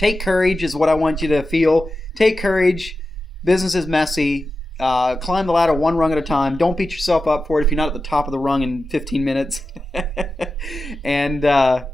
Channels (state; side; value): normal; both; correlation 0.92